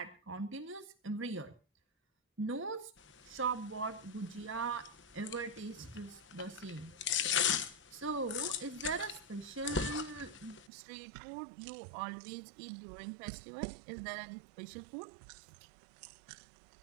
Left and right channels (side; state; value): left; drops out; at 10.7 s